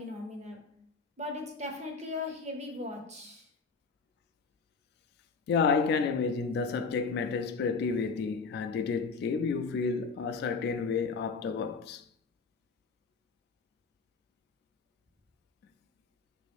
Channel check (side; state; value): right; quieter; 4.7 dB